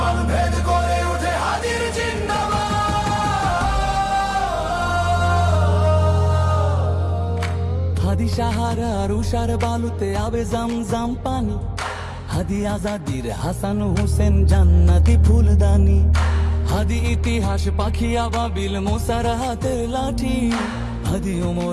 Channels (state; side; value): identical; both; correlation 1.00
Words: ভেদ করে ওঠে হাদির জিন্দাবাদ। হাদি সাহারার উষার বালুতে আবে জামজাম পানি, হাদি আজাদির হাসান হোসেন জান্নাতি ফুলদানি। হাদি ইতিহাস পাখি আবাবিল মুসার হাতের লাঠি, হাদি